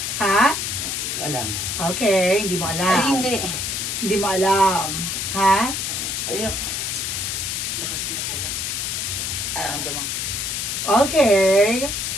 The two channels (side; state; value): left; noise; hiss, 2 dB below the sound